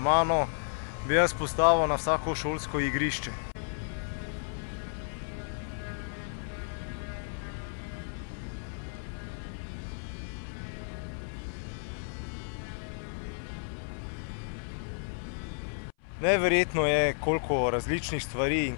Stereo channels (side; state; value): right; silent; 56 dB below the other